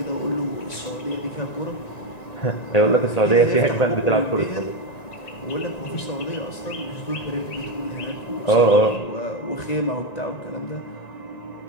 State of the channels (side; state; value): right; late; 1.9 ms